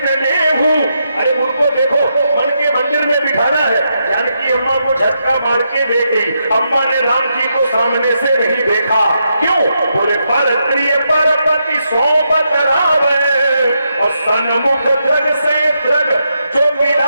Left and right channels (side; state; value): both; inverted; correlation -0.82